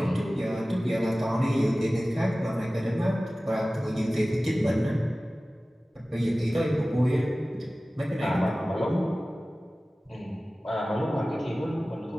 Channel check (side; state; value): both; normal; correlation 0.97